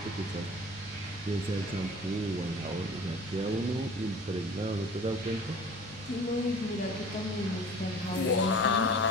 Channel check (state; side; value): normal; both; correlation 0.43